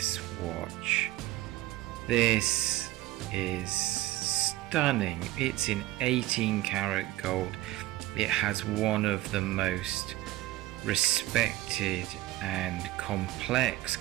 watch. This is stunning. It's in 18 karat gold. It has one of the most respected and complex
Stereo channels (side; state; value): left; quieter; 16.6 dB